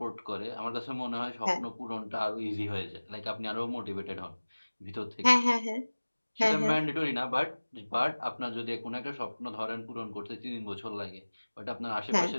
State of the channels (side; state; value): both; inverted; correlation -1.00